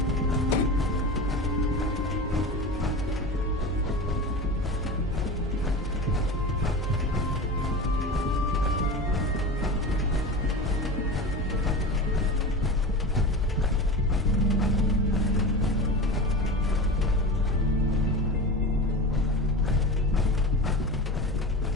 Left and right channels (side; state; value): both; normal; correlation 0.29